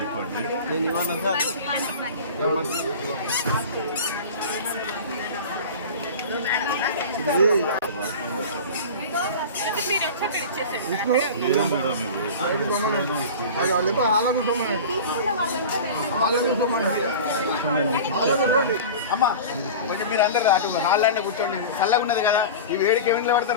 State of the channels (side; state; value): both; inverted; correlation -0.34